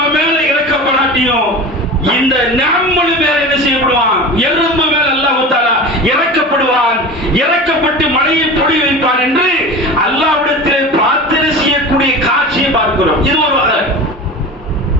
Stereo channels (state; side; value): normal; both; correlation 0.32